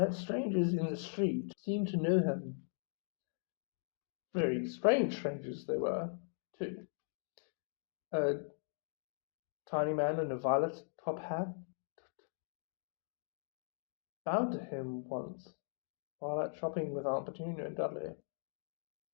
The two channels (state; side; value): silent; right; digital silence